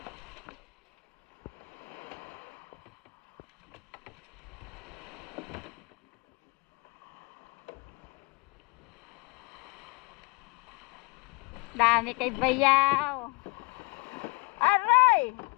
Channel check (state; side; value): quieter; right; 28.0 dB